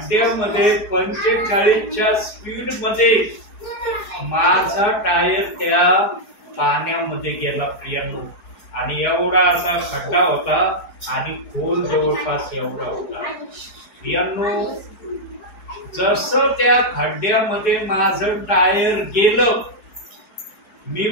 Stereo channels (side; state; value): right; late; 4.7 ms